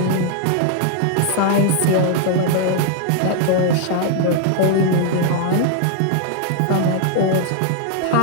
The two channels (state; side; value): different; both; correlation 0.00